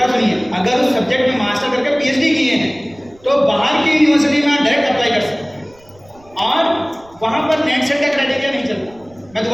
सुनिए, अगर उस सब्जेक्ट में मास्टर करके पीएचडी किए हैं तो बाहर की यूनिवर्सिटी में आप डायरेक्ट अप्लाई कर सकते हैं और वहाँ पर नेट सेट का क्राइटेरिया नहीं चलता। मैं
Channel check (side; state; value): right; noise; rumble, 28 dB below the sound